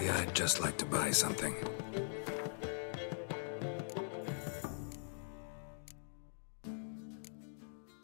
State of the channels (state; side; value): silent; right; digital silence